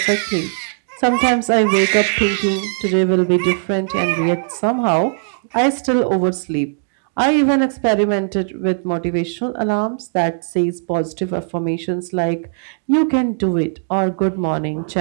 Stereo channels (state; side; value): silent; left; digital silence